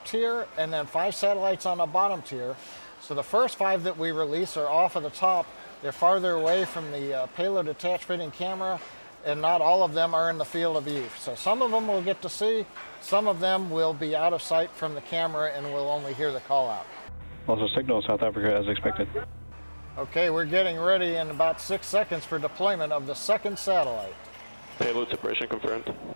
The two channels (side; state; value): both; inverted; correlation -1.00